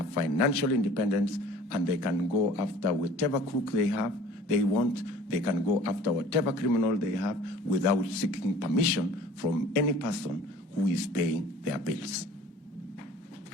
financial independence, and they can go after whatever crook they want, they can go after whatever criminal they have without seeking permission from any person who is paying their bills.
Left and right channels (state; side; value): normal; both; correlation 0.48